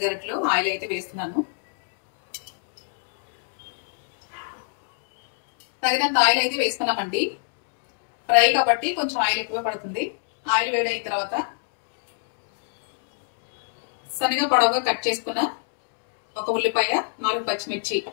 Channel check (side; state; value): right; silent; digital silence